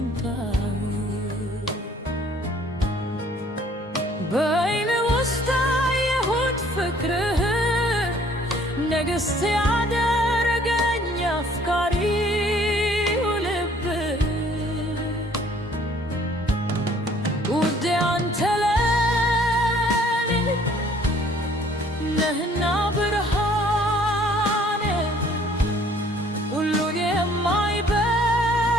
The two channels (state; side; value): normal; both; correlation 0.58